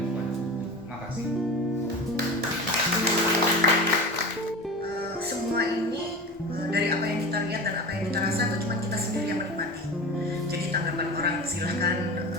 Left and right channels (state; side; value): normal; both; correlation 0.31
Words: buat aku. Terima kasih. Semua ini dari apa yang kita lihat dan apa yang kita rasa itu cuma kita sendiri yang menikmati. Jadi tanggapan orang silahkan